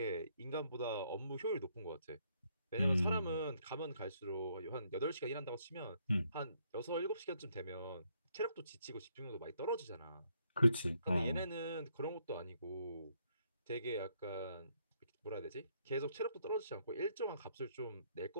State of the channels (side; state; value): both; inverted; correlation -0.71